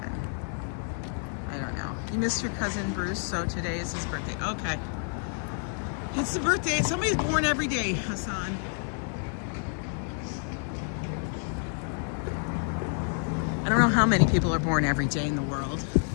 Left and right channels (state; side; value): silent; right; 55 dB below the other